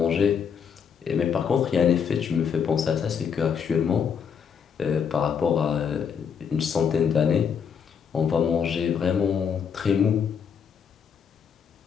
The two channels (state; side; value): quieter; right; 7.1 dB